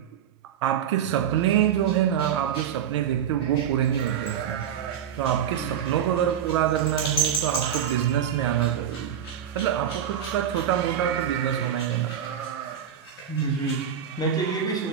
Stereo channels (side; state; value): left; quieter; 9.0 dB